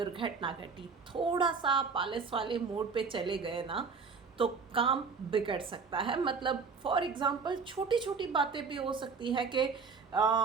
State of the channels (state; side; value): quieter; left; 5.2 dB